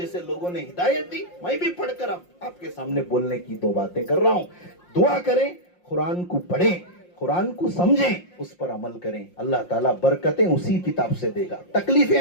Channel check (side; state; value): right; late; 5.6 ms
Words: لوگوں نے ہدایت دی، میں بھی پڑھ کر آپ کے سامنے بولنے کی 2 باتیں کر رہا ہوں. دعا کریں، قرآن کو پڑھیں، قرآن کو سمجھیں، اس پر عمل کریں. اللہ تعالیٰ برکتیں اسی کتاب سے دے گا. تکلیفیں